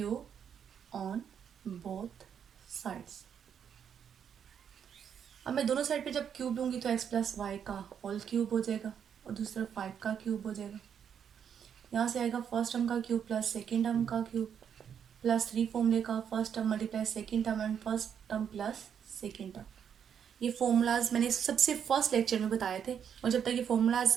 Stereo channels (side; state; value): left; quieter; 8.1 dB